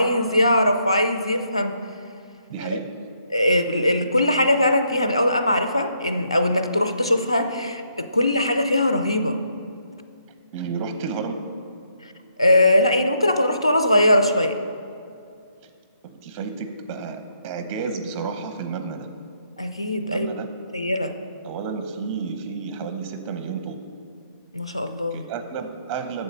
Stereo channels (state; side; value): inverted; both; correlation -0.74